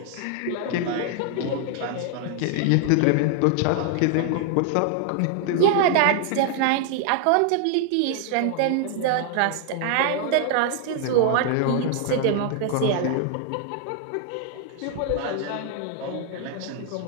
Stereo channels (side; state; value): both; different; correlation 0.00